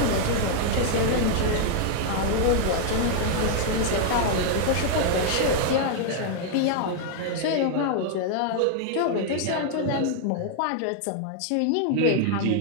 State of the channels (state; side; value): different; both; correlation 0.00